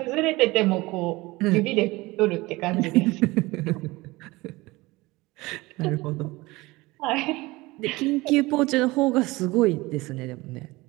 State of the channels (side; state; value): left; quieter; 21.3 dB